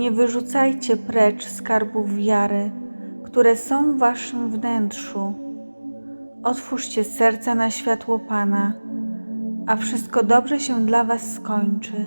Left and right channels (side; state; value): both; inverted; correlation -1.00